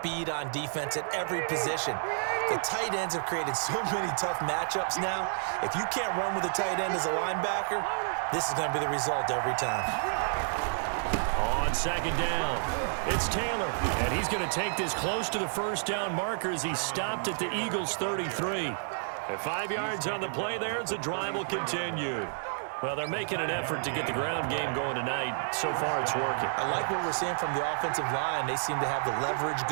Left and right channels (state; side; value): silent; left; digital silence